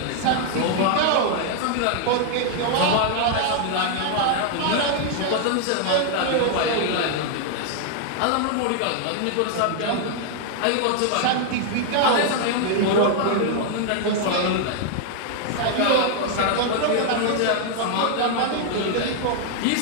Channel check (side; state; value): both; different; correlation 0.00